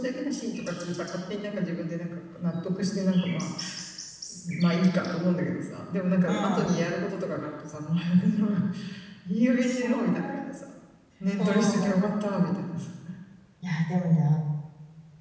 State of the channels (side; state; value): both; identical; correlation 1.00